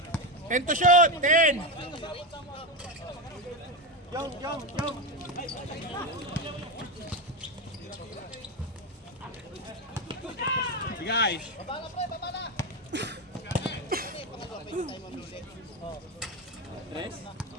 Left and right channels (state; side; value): normal; both; correlation 0.14